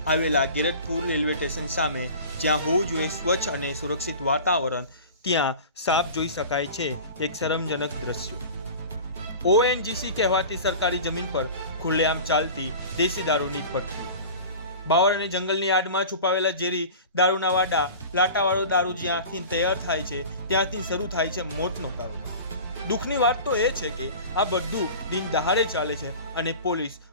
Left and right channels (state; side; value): inverted; both; correlation -0.37